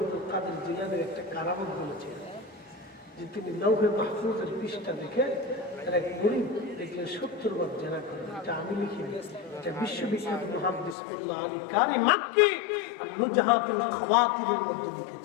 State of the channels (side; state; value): right; drops out; at 11.0 s